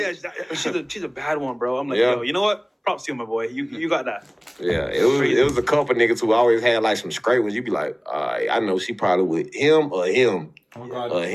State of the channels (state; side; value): identical; both; correlation 1.00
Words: she's a bad one, bro. I'm like, yo, you know what? Props to you, my boy. You got that. Yeah, it was a couple niggas who always had like some straight ones. You be like, I know she probably with him or him. Oh, God. Or